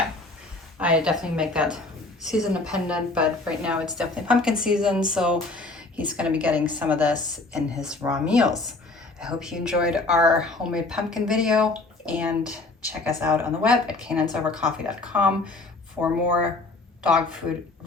I definitely make that season dependent, but right now it's definitely pumpkin season. So he's gonna be getting some of this in his raw meals. I hope you enjoyed our homemade pumpkin video, and check us out on the web at canines-over-coffee.com for more dog food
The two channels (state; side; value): quieter; right; 3.2 dB